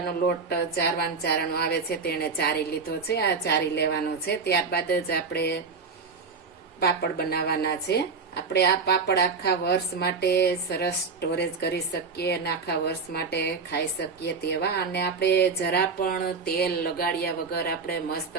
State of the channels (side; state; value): left; quieter; 4.9 dB